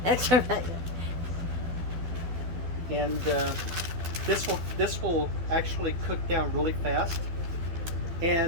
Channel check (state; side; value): late; left; 12 ms